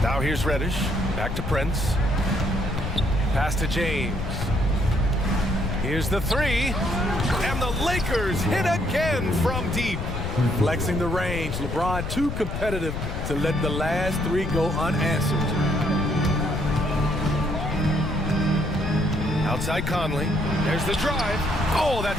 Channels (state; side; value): noise; left; rumble, 4 dB below the sound